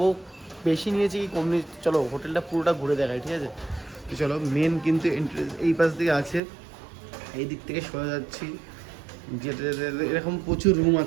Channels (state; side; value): drops out; left; at 6.4 s